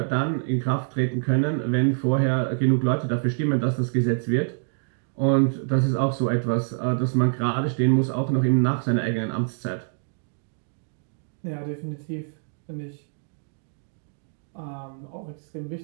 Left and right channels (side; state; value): left; silent; digital silence